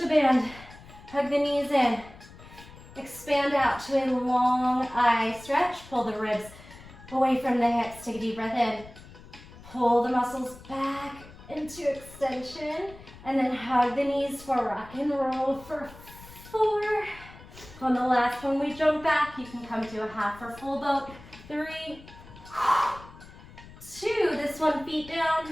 band. Hug the knees in. Expand out to a long eye stretch. Pull the ribs away from the hips. Take a deep breath in. Pull the muscles back into extension. And then hug the knees for rock and roll for 4. On the last one, we jump back. You can come to a half or full boat. 3, 2. This one, feet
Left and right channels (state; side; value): noise; left; rumble, 19 dB below the sound